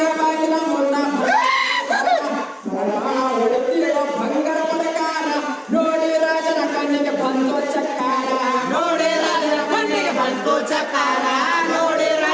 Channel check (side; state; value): both; identical; correlation 1.00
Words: ಬಾಗಿಲ ಮುಂದ ಬಂಗಾರ ಪ್ರಕಾರ ನೋಡಿ ರಾಜನ ಕಣ್ಣಿಗೆ ಬಂದು ಚಕ್ಕಾರ ನೋಡಿ ರಾಜನ ಕಣ್ಣಿಗೆ ಬಂತು ಚಕಾರ ನೋಡಿ